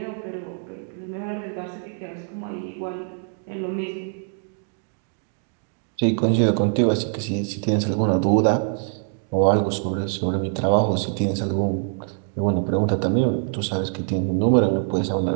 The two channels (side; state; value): left; silent; 63 dB below the other